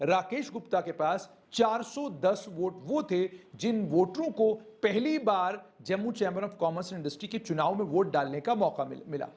राकेश गुप्ता के पास 410 वोट वो थे जिन वोटरों को पहली बार Jammu chamber of commerce and industry के चुनाव में वोट डालने का मौका मिला।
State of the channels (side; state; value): both; identical; correlation 1.00